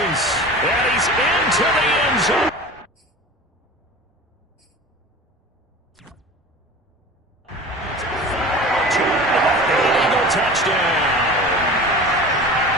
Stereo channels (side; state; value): both; normal; correlation 0.37